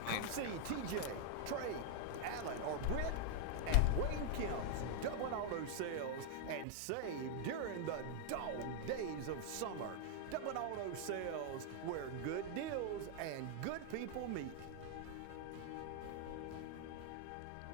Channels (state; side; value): different; both; correlation 0.00